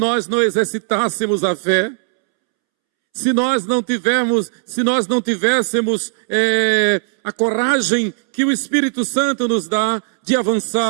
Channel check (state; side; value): silent; left; 68 dB below the other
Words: não exercitássemos a fé, se nós não tivéssemos a coragem que o Espírito Santo nos dá de